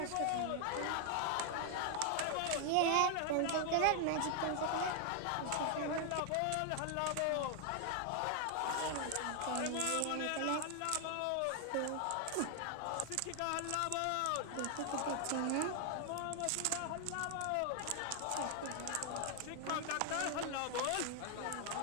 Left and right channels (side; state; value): both; different; correlation 0.00